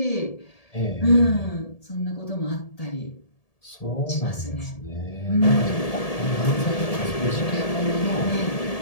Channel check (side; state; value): right; late; 1.7 ms